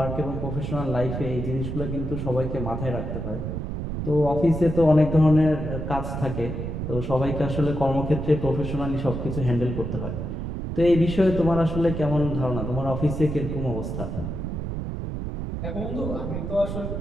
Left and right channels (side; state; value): right; noise; rumble, 4 dB below the sound